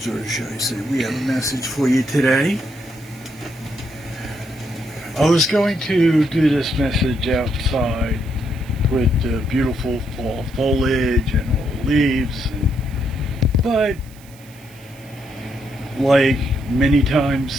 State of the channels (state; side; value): noise; right; hiss, 25 dB below the sound